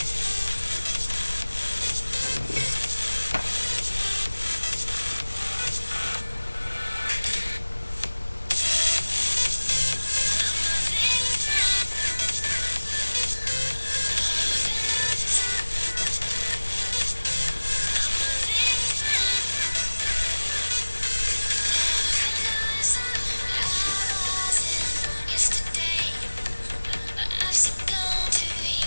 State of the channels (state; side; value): inverted; both; correlation -1.00